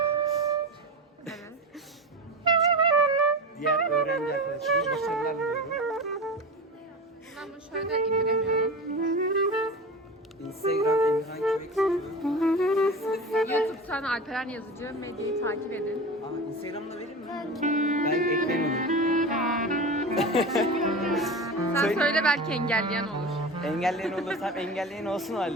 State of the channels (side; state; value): both; normal; correlation 0.28